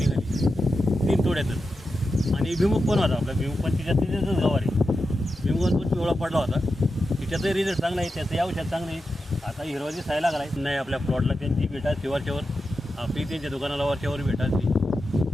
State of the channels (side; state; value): both; normal; correlation 0.90